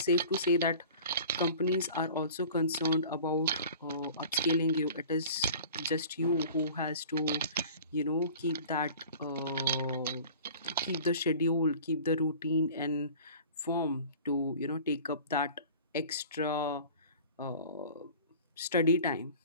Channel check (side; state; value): both; inverted; correlation -0.43